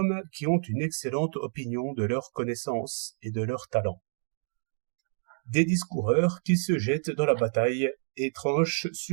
qui ont une excellente opinion de leurs connaissances et de leurs talents. Des discoureurs qui se jettent dans la bataille et tranchent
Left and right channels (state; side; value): silent; left; digital silence